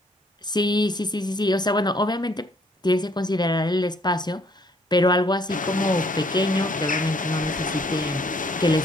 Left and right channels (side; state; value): both; normal; correlation 0.64